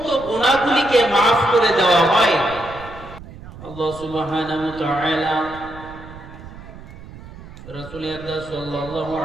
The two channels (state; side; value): noise; right; rumble, 16 dB below the sound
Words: গুনাহগুলিকে মাফ করে দেওয়া হয়। আল্লাহ সুবহানাহু ওয়া তাআলা রাসূল আকরাম সাল্লাল্লাহু